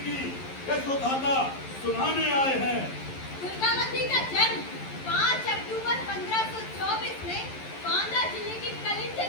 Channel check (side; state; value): right; late; 11 ms